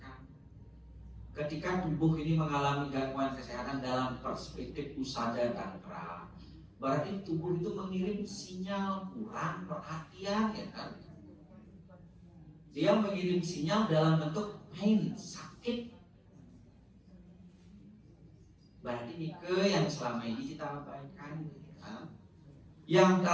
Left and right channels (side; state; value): both; identical; correlation 1.00